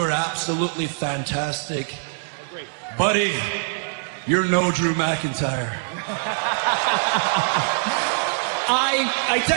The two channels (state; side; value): silent; left; 63 dB below the other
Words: are absolutely fantastic. Great. Buddy, you're no Drew McIntyre. I